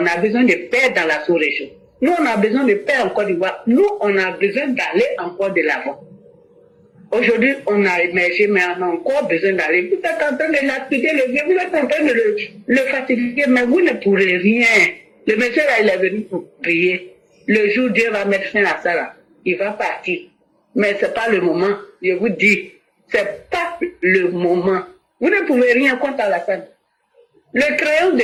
On a besoin de paix dans la sous-région. Nous, on a besoin de paix en Côte d'Ivoire. Nous, on a besoin d'aller encore de l'avant. Aujourd'hui, on a émergé, mais on a encore besoin d'aller. Vous êtes en train de lapider le vieux, vous êtes en train de le fatiguer, mais vous ne pourrez rien. Le monsieur là, il est venu pour prier. Le jour où Dieu va mettre fin à ça là, il va partir. Mais c'est pas le moment. Je vous dis, c'est pas le moment. Vous ne pouvez rien contre Alassane. Le crayon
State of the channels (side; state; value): both; identical; correlation 1.00